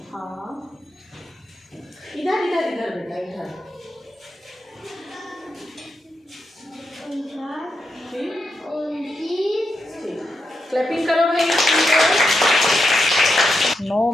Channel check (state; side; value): normal; both; correlation 0.85